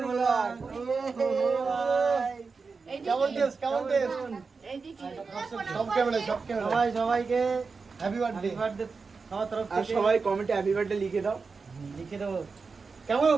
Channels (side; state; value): left; quieter; 4.7 dB